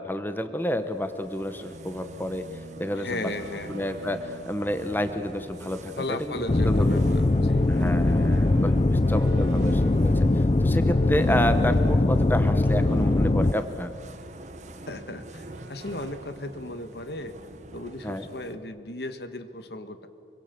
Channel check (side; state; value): both; normal; correlation 0.87